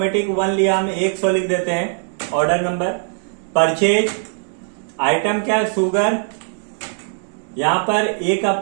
1 लिया, हम 100 लिख देते हैं ऑर्डर नंबर। परचेज आइटम क्या है, शुगर। यहां पर 1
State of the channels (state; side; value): silent; left; digital silence